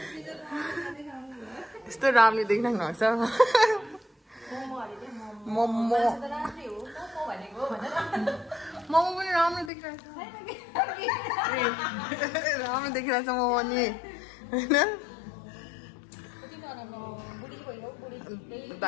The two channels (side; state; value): right; drops out; at 9.7 s